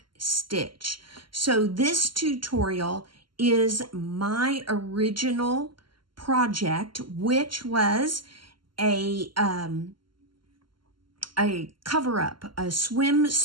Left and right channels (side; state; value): left; late; 0.72 ms